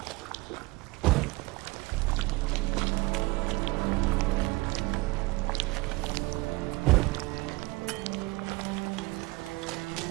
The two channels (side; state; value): left; quieter; 21.8 dB